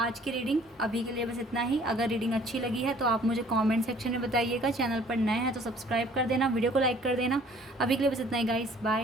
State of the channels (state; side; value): normal; both; correlation 0.55